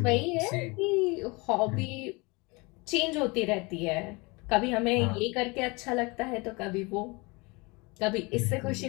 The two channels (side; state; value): right; quieter; 26.6 dB